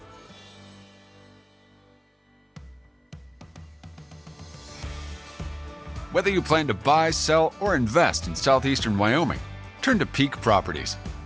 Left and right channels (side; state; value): both; identical; correlation 1.00